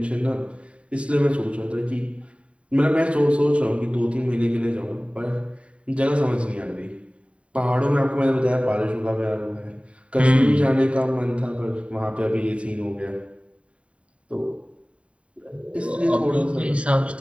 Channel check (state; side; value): late; left; 0.062 ms